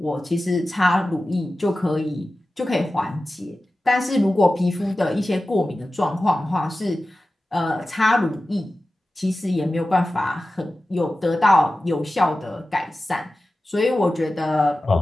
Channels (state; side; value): normal; both; correlation 0.95